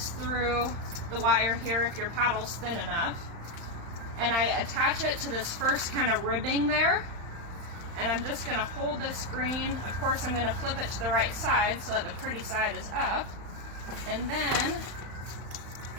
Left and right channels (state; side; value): late; left; 35 ms